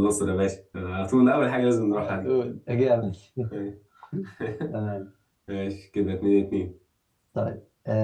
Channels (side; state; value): both; identical; correlation 1.00